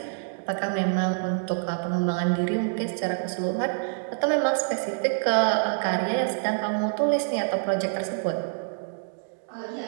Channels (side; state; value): left; silent; digital silence